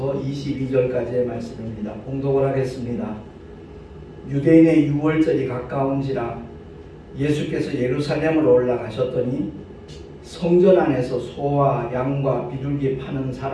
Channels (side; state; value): both; identical; correlation 1.00